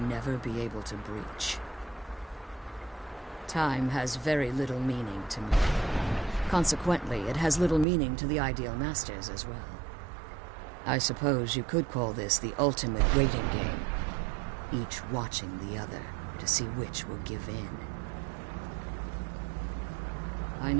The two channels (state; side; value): drops out; left; at 7.9 s